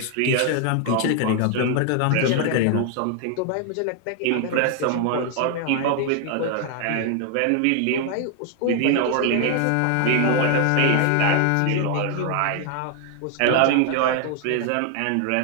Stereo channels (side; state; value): both; different; correlation 0.00